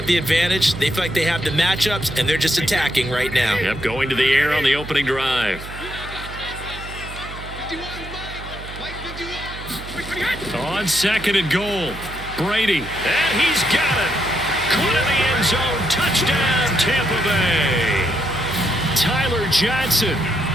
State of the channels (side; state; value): right; noise; hum, 12 dB below the sound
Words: the advantage. They feel like they have the matchups, and they're just attacking right now. Yep, going to the air on the opening drive. On second and goal, Brady. And he's got it. Caught in the end zone. Touchdown, Tampa Bay. Tyler Johnson